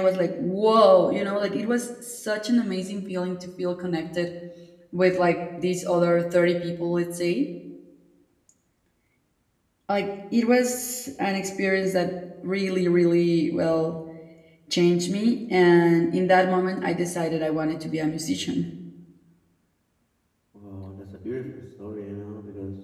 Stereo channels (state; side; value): identical; both; correlation 1.00